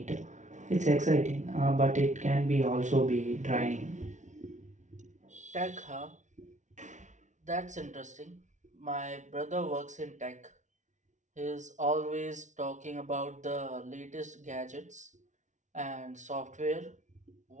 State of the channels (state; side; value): late; left; 0.36 ms